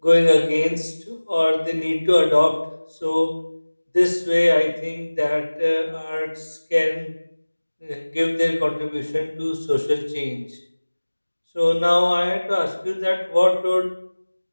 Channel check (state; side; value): inverted; both; correlation -1.00